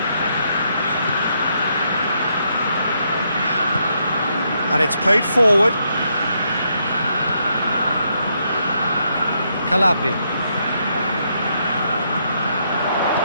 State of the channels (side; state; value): both; inverted; correlation -0.76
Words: And it's played forward. Calabria.